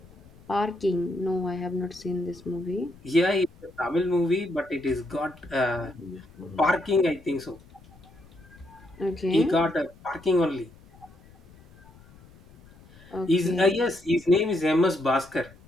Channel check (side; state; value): left; noise; rumble, 24 dB below the sound